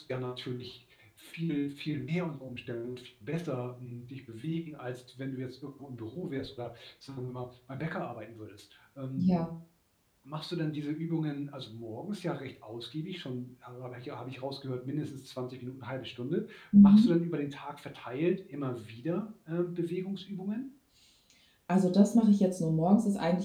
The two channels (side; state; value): both; identical; correlation 1.00